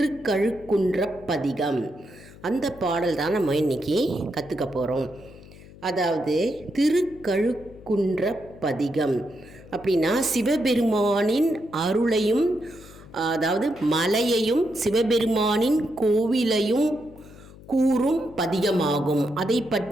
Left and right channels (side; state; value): left; noise; hum, 20 dB below the sound